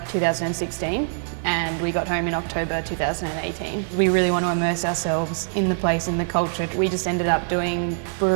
2016 and we got home in October 2018. We really want to immerse ourselves in the place, in the culture. We just ended up doing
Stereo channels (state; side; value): silent; left; digital silence